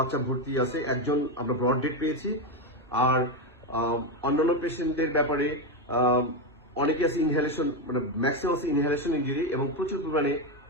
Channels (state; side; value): normal; both; correlation 0.09